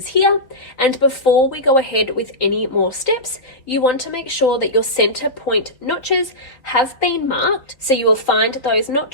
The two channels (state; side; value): late; right; 3.6 ms